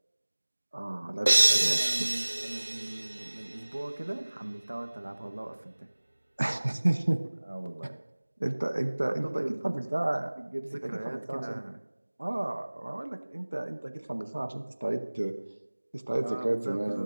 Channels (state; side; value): inverted; both; correlation -1.00